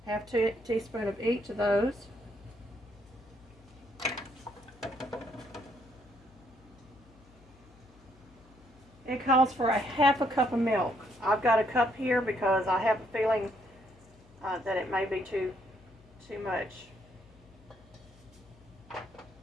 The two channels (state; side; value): noise; left; hum, 26 dB below the sound